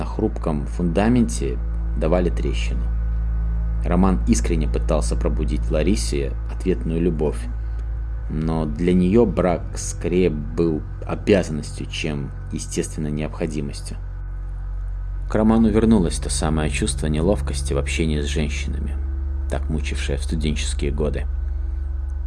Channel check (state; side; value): identical; both; correlation 1.00